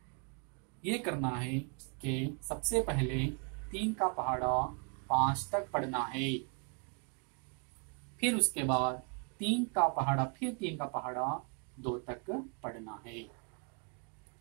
यह करना है कि सबसे पहले 3 का पहाड़ा 5 तक पढ़ना है, फिर उसके बाद 3 का पहाड़ा, फिर 3 का पहाड़ा 2 तक पढ़ना है।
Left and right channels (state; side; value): quieter; left; 38.5 dB